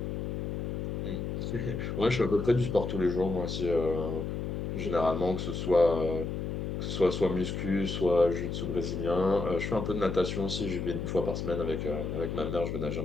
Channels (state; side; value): noise; left; hum, 3 dB below the sound